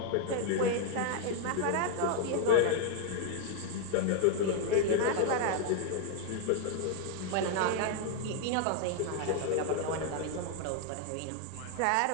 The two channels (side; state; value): both; different; correlation 0.00